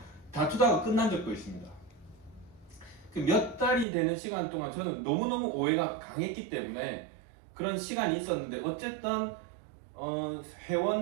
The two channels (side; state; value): left; drops out; at 3.9 s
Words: 다투다가 끝난 적도 있습니다. 그 몇 달이 되는 시간 동안 저는 너무너무 오해가 강했기 때문에 그런 시간이 있었는데 어쨌든